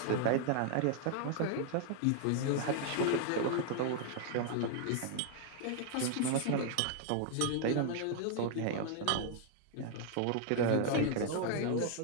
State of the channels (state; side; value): different; both; correlation 0.00